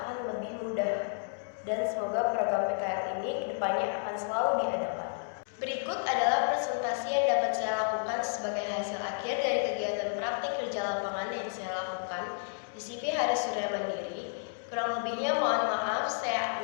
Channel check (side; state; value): right; silent; digital silence